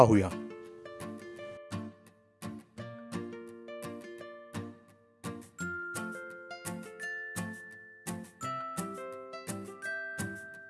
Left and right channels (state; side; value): identical; both; correlation 1.00